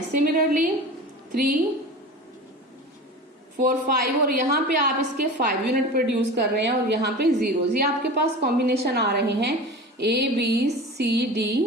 सिमिलरली 3, 4, 5 और यहाँ पे आप इसके 5 यूनिट प्रोड्यूस कर रहे हैं और यहाँ पे 0। ये आपके पास कॉम्बिनेशन आ रहे हैं A, B, C, D,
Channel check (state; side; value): normal; both; correlation 0.33